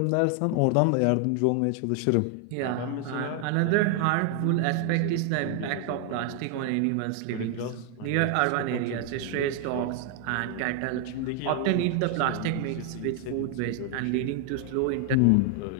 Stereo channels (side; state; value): both; different; correlation 0.00